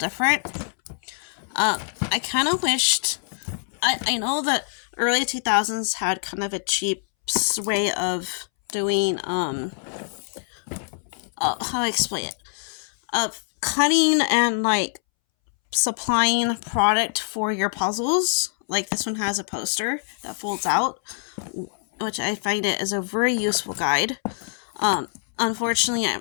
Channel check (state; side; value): silent; right; 62 dB below the other